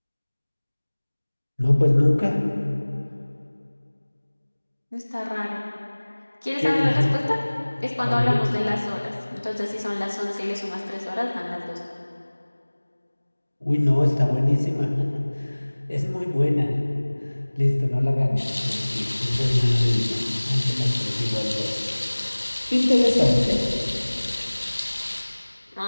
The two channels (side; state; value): both; inverted; correlation -1.00